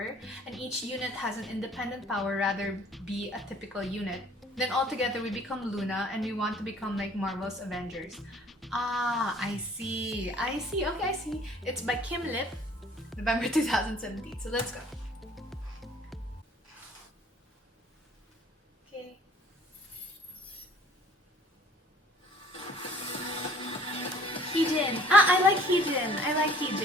and each unit has an independent power rather be a typical unit. Then all together we become Loona and we want to become like Marvel's Avengers. Ah, I see. Okay, I see. It's by Kim Lip, November 2017. So let's go. Okay. Heejin. Ah, I like Heejin. I like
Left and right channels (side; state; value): both; normal; correlation 0.55